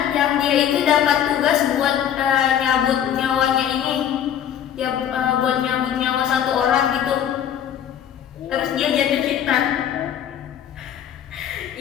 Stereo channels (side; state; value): right; quieter; 9.8 dB